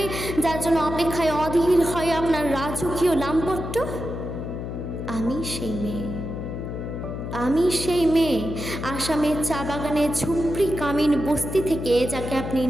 যার জন্য অপেক্ষায় অধীর হয় আপনার রাজকীয় লামপট্ট। আমি সেই মেয়ে। আমি সেই মেয়ে আসামের চা বাগানে ঝুপড়ি কামিন বস্তি থেকে যাকে আপনি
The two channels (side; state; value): left; noise; hum, 6 dB below the sound